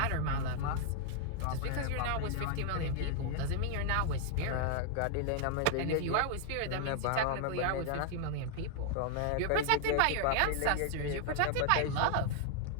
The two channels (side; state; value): both; different; correlation 0.00